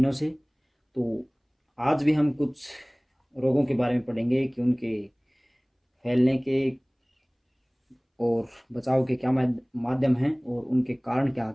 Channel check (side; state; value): both; identical; correlation 1.00